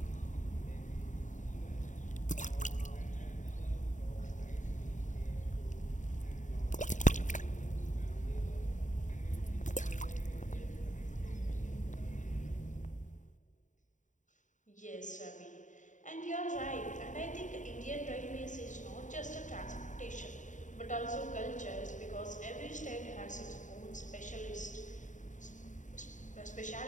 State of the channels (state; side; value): late; right; 0.36 ms